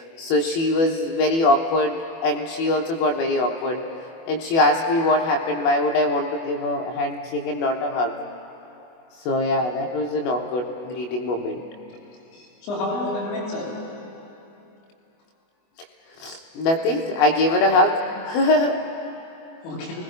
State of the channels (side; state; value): right; late; 24 ms